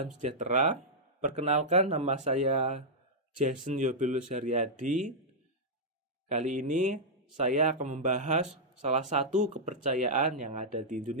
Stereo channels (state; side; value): normal; both; correlation -0.08